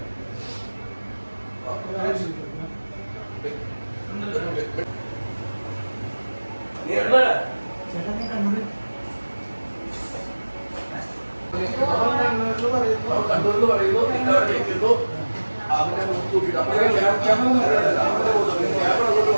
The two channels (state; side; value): inverted; both; correlation -1.00